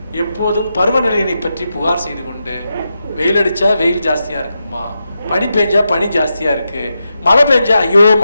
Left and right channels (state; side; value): inverted; both; correlation -0.88